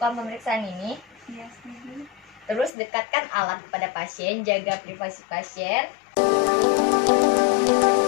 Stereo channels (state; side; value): drops out; right; at 2.7 s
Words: pemeriksaan ini? Iya, setuju. Terus dekatkan alat kepada pasien, jaga privasi pasien.